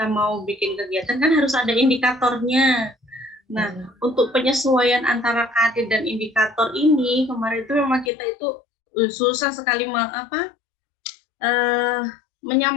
mau bikin kegiatan kan harus ada indikatornya. Nah, untuk penyesuaian antara KD dan indikator ini kemarin itu memang kita itu susah sekali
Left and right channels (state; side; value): drops out; right; at 8.1 s